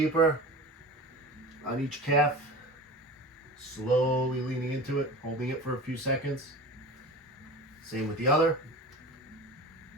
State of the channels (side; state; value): both; normal; correlation 0.34